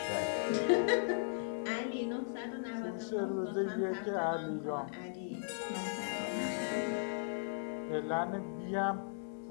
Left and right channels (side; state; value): right; silent; digital silence